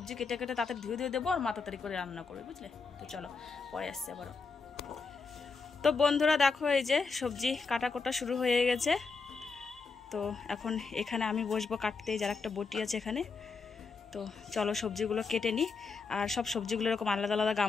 কেটে কেটে তাড়াতাড়ি ধুয়ে দেবো, আর মা তাড়াতাড়ি করে রান্না করবে, বুঝলে? তো চলো পরে আসছে আবারও। তো বন্ধুরা দেখো এই যে সবজি কাটা শুরু হয়ে গেছে। তো এখন এখানে আমি বসবো কাটতে, যার একটা বটি আছে এখানে। তো চলো সবজিগুলো কেটে নিই, আর সব সবজিগুলো এরকম আলাদা আলাদা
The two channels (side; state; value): right; quieter; 4.6 dB